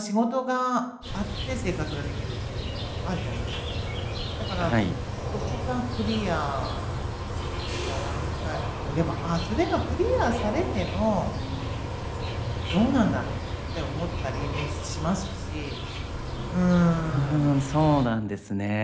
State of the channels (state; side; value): identical; both; correlation 1.00